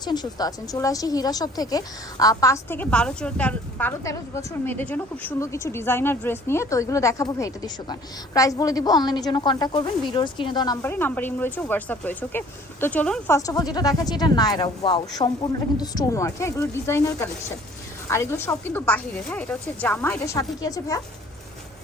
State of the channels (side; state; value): both; normal; correlation 0.53